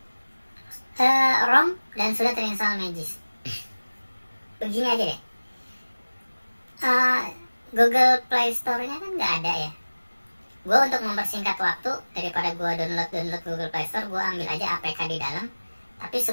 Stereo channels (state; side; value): inverted; both; correlation -1.00